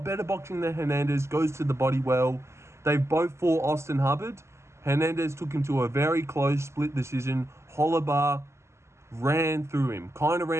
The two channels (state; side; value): late; left; 0.13 ms